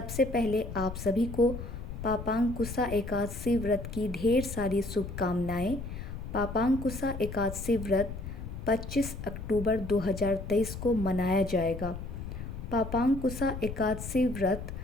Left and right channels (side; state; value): left; noise; rumble, 8 dB below the sound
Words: पहले आप सभी को पापांकुशा एकादशी व्रत की ढेर सारी शुभकामनाएं। पापांकुशा एकादशी व्रत 25 अक्टूबर 2023 को मनाया जाएगा। पापांकुशा एकादशी व्रत